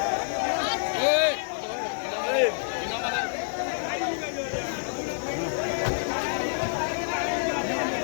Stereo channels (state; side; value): silent; right; digital silence